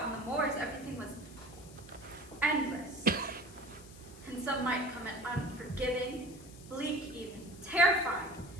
on the moors, everything was endless. And some might come at unforgiving, bleak even, terrifying.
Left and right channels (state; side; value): noise; left; hiss, 20 dB below the sound